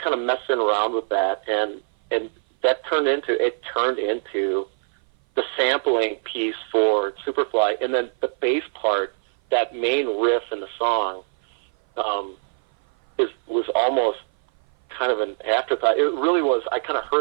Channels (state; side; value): silent; left; 58 dB below the other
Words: of messing around with that, and that turned into the sampling piece for Superfly, and then the bass part, that main riff in the song, was almost kind of an afterthought. It really was. I kind of